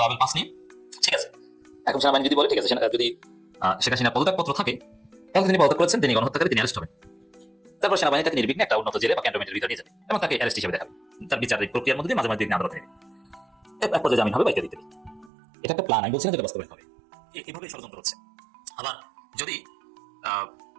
পাস নিয়ে, ঠিক আছে। এখন সেনাবাহিনী যদি বলে ঠিক আছে, যদি শেখ হাসিনার পদত্যাগপত্র থাকে তাহলে তিনি পদত্যাগ করেছেন, তিনি গণহত্যাকারী, তিনি অ্যারেস্ট হবেন। তারপর সেনাবাহিনী তাকে নির্বিঘ্নে একটা উন্নত জেলে বা ক্যান্টনমেন্টের ভিতরে নিয়ে যাবে এবং তাকে অ্যারেস্ট হিসেবে দেখাবে। তার বিচারিক প্রক্রিয়ার মধ্যে মাঝে মাঝে আদালতে নেবে, এক পর্যায়ে জামিন হবে, বাইকে দিতে হবে। এটা একটা প্ল্যান, আমি বলছি না যেটা বাস্তবায়ন হবে। এভাবে ষড়যন্ত্র হচ্ছে। আবার যদি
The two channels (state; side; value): drops out; left; at 15.3 s